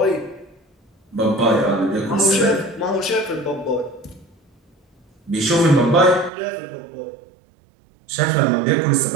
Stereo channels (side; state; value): left; drops out; at 6.3 s